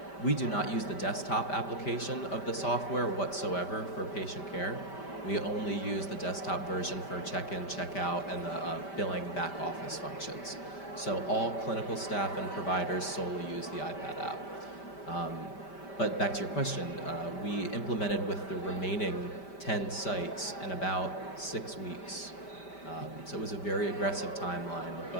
we do not use the desktop application of the software whatsoever for patient care. We only use the desktop version for check-in, check-out, and the billing back office functions. So all clinical staff and providers solely use the iPad app. But back to your question, we implemented with the remaining 10 sites in about 6 weeks. So it was a very aggressive timeline,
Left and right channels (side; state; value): right; late; 5.1 ms